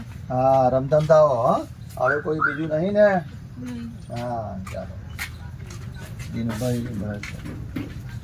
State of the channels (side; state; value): both; identical; correlation 1.00